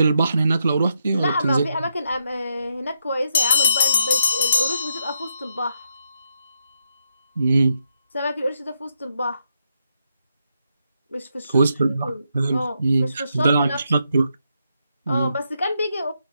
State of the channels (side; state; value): both; inverted; correlation -0.81